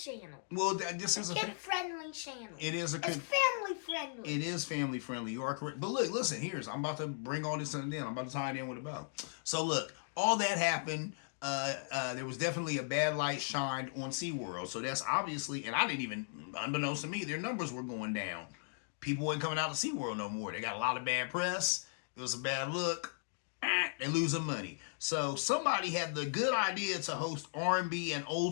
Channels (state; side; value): silent; right; digital silence